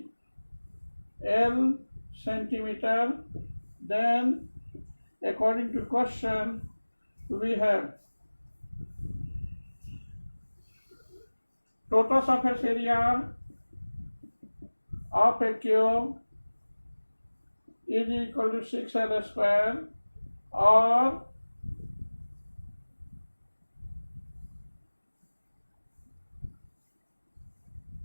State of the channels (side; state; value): both; inverted; correlation -1.00